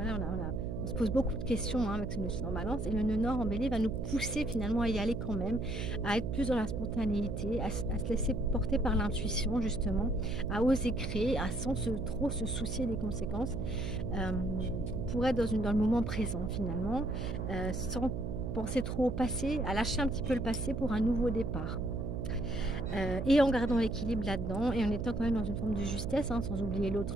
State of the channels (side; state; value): right; noise; hum, 4 dB below the sound